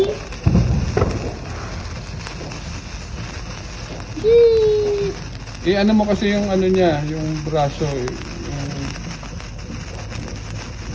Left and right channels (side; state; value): both; identical; correlation 1.00